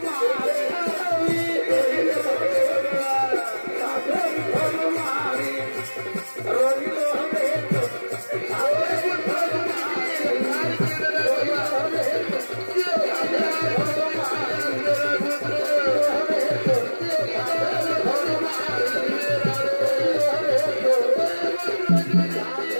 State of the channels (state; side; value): inverted; both; correlation -1.00